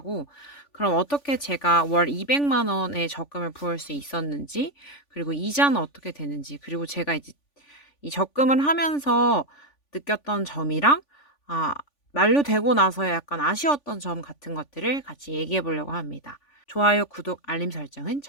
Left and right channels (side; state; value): right; late; 3.5 ms